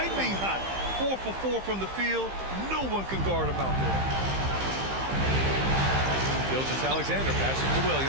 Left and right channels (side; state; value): left; late; 15 ms